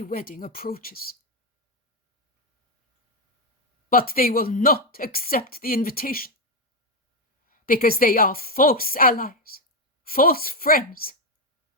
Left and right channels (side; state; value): both; normal; correlation 0.06